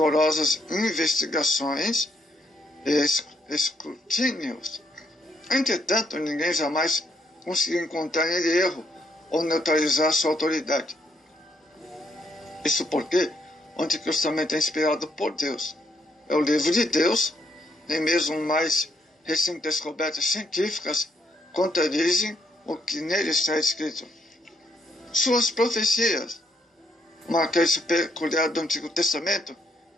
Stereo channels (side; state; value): both; normal; correlation 0.74